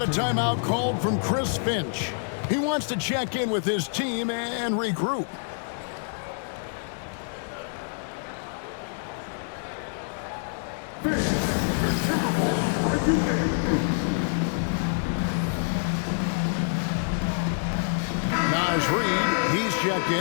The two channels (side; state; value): right; silent; digital silence